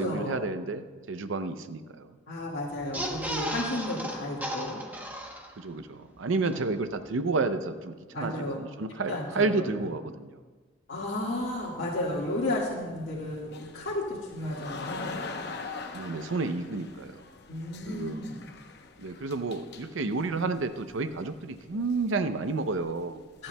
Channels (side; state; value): both; normal; correlation 0.24